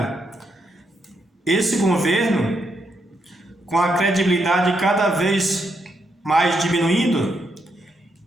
Esse governo, com a credibilidade cada vez mais diminuindo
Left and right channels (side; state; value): both; normal; correlation 0.79